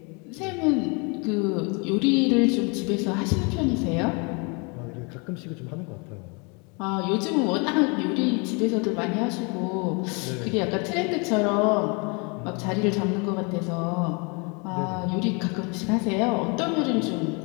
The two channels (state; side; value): quieter; right; 32.1 dB